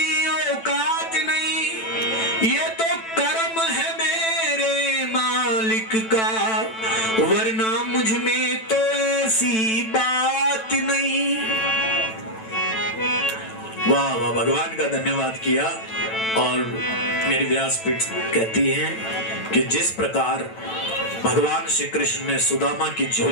औकात नहीं, ये तो कर्म है मेरे मालिक का, वरना मुझ में तो ऐसी बात नहीं। वाह वाह भगवान का धन्यवाद किया। और मेरी व्यासपीठ कहती है कि जिस प्रकार भगवान श्री कृष्ण ने सुदामा की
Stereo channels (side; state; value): right; late; 9.0 ms